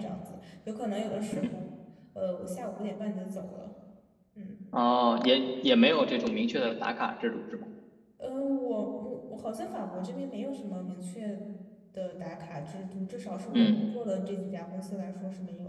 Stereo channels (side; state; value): both; identical; correlation 1.00